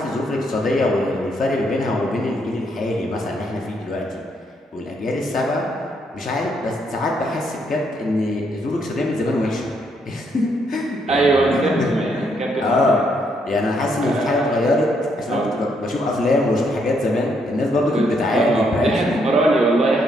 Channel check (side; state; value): both; normal; correlation 0.74